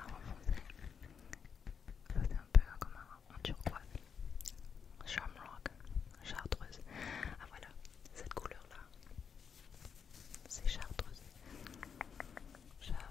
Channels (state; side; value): quieter; right; 6.8 dB